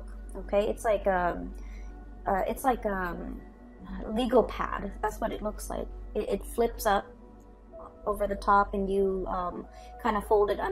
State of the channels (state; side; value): identical; both; correlation 1.00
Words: Okay, it's like a legal pad. That's what it looks like. It flips up over the top, and you kind of fold it